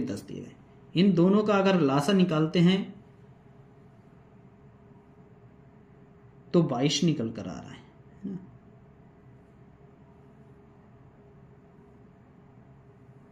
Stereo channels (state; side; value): identical; both; correlation 1.00